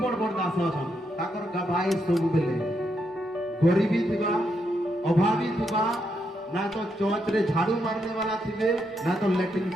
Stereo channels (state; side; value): normal; both; correlation 0.80